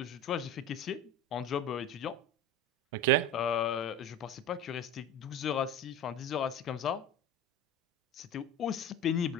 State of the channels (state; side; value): normal; both; correlation 0.31